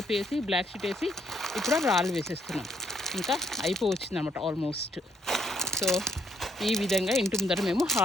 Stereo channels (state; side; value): normal; both; correlation 0.70